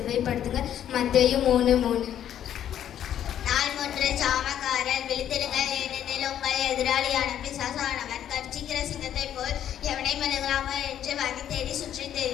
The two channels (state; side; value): quieter; right; 10.4 dB